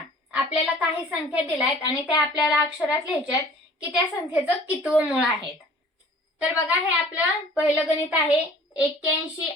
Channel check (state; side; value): normal; both; correlation 0.49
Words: आपल्याला काही संख्या दिल्यात आणि त्या आपल्याला अक्षरात लिहायच्यात की त्या संख्येचं कितवं मूळ आहे. तर बघा हे आपलं पहिलं गणित आहे 81